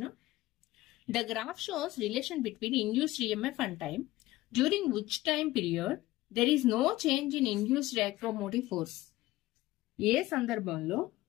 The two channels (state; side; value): quieter; right; 17.4 dB